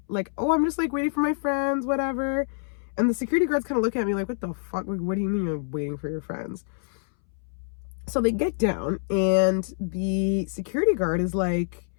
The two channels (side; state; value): right; silent; 61 dB below the other